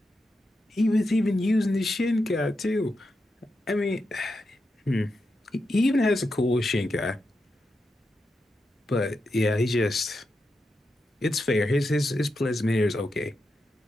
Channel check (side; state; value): both; normal; correlation 0.87